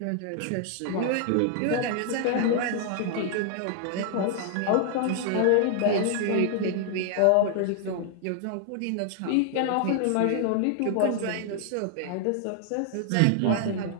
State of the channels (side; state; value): both; different; correlation 0.00